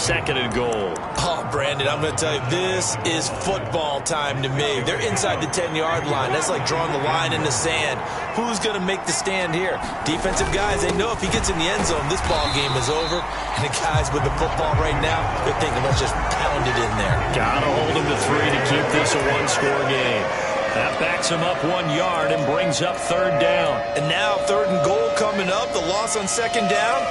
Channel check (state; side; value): identical; both; correlation 1.00